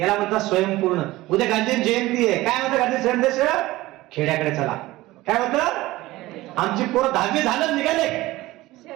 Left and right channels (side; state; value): left; quieter; 18.2 dB